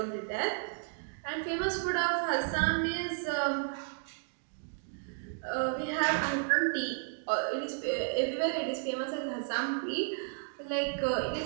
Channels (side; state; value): left; silent; digital silence